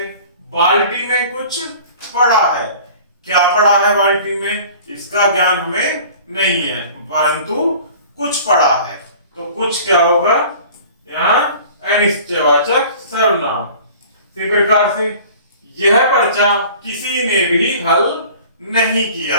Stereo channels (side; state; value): both; inverted; correlation -0.45